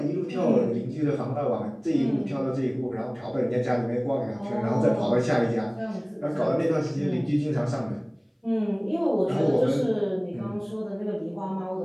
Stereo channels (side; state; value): both; identical; correlation 1.00